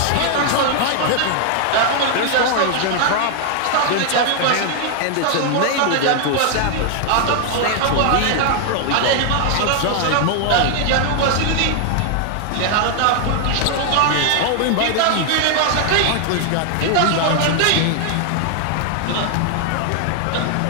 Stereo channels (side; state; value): both; different; correlation 0.00